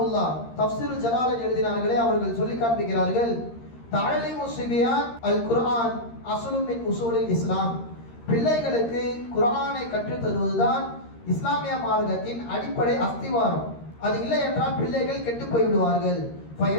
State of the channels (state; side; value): late; right; 13 ms